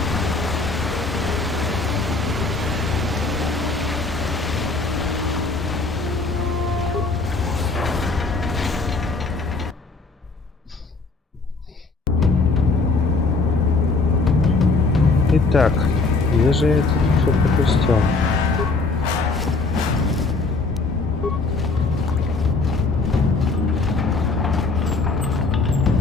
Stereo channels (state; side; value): quieter; right; 3.8 dB